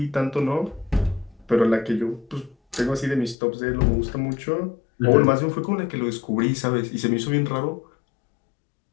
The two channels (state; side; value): drops out; right; at 3.4 s